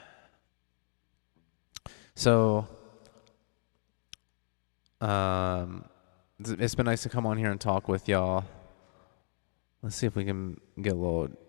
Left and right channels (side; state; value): right; silent; digital silence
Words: So, it's been nice to come on here and talk with y'all. Let's see if we can get a little